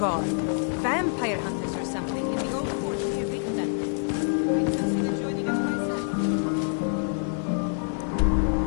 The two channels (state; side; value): silent; right; digital silence